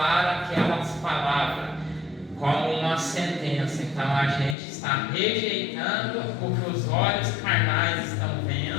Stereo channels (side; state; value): right; drops out; at 4.5 s